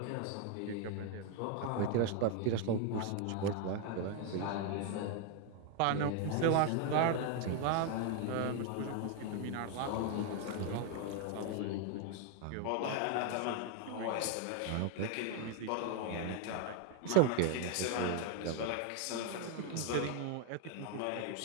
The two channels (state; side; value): different; both; correlation 0.00